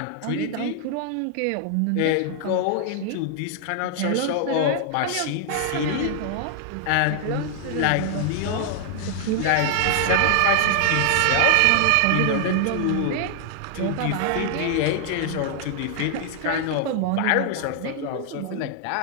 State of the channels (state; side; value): different; both; correlation 0.00